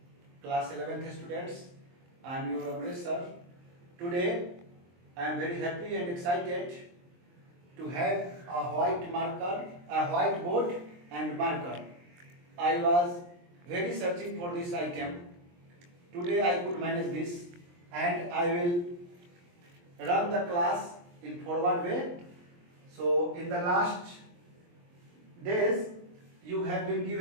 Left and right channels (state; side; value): late; left; 23 ms